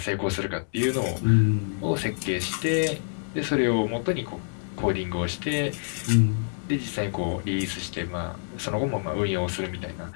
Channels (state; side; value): silent; right; digital silence